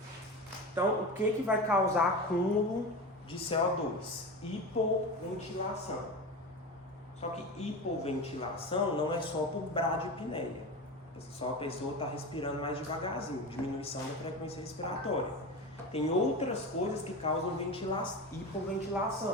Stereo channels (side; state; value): both; normal; correlation 0.26